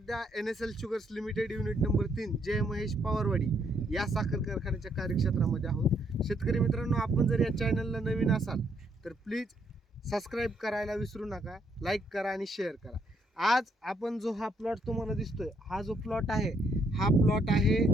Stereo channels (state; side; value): normal; both; correlation 0.71